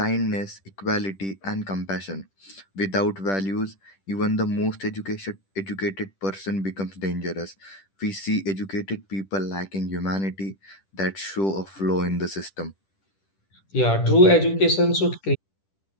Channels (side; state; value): right; late; 10 ms